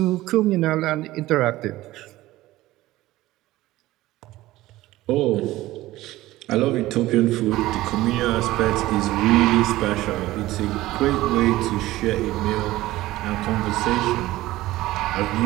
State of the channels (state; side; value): quieter; left; 16.9 dB